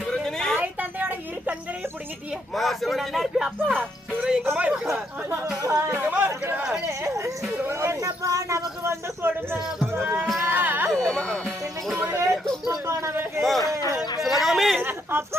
தந்தையோட இரு கண்களையும் புடுங்கிட்டியே. மா, சிவனே. நல்லா இருப்பியா அப்பா? சிவரே எங்கம்மா இருக்கடா? எங்கம்மா இருக்கடா? என்னப்பா நமக்கு வந்து கொடுமை அப்பா. இன்னைக்கு ஒரே துன்பப்பா நமக்கு. சிவகாமி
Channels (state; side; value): normal; both; correlation 0.74